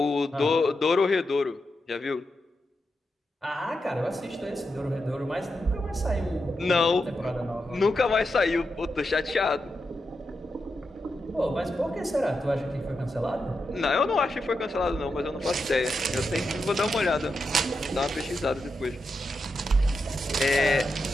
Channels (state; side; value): normal; both; correlation 0.87